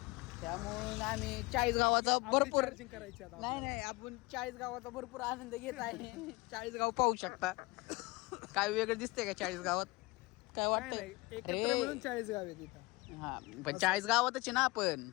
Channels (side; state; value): right; quieter; 23.3 dB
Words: त्यामुळे आम्ही 40 गावाचा भरपूर नाही आपण 40 गावाचा भरपूर आनंद घेत आहे. 40 गाव पाहू शकता. काय वेगळं दिसतंय का 40 गावात? काय वाटतंय? 40 गाव आहे तिथं. हा पण 40 गावातच आहे ना आपण.